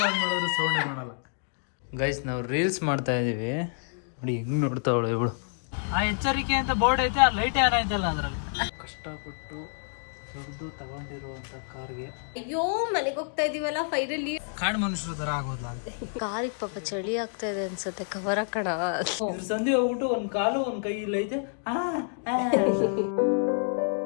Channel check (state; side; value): silent; right; digital silence